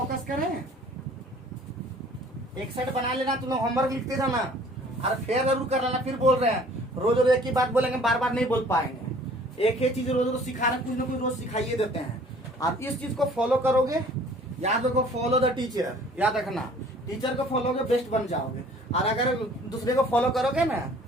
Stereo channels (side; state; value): both; normal; correlation 0.52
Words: करें, एक सेट बना लेना। तुम लोग होमवर्क लिखते जाना और फिर जरूर कर लेना। फिर बोल रहे हैं रोज रोज एक ही बात बोलेंगे, बार बार नहीं बोल पाएंगे। एक ही चीज रोज रोज सिखा रहे हैं, कुछ ना कुछ रोज सिखाइए देते हैं। आप इस चीज को फॉलो करोगे, याद रखो, फॉलो द टीचर, याद रखना। टीचर को फॉलो करोगे बेस्ट बन जाओगे। और अगर दूसरे को फॉलो करोगे ना